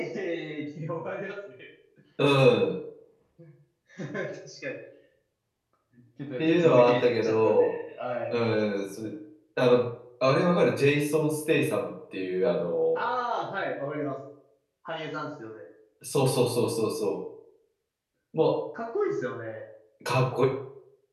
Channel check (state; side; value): identical; both; correlation 1.00